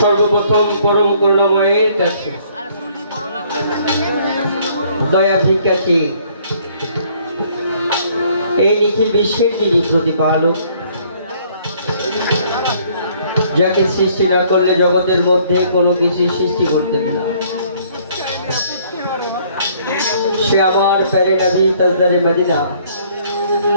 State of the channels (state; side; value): inverted; both; correlation -0.62